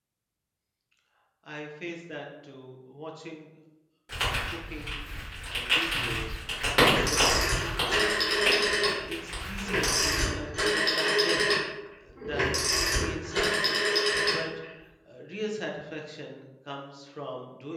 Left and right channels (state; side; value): identical; both; correlation 1.00